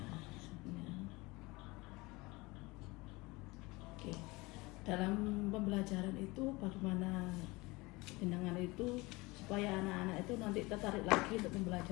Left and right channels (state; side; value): quieter; right; 23.3 dB